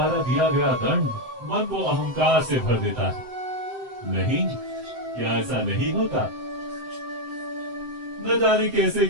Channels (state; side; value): late; left; 7.8 ms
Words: दिया गया दंड मन को अहंकार से भर देता है। नहीं, क्या ऐसा नहीं होता? न जाने कैसे